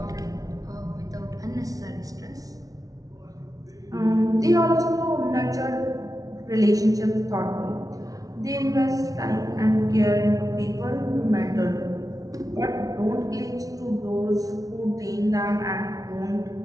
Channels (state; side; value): late; left; 0.18 ms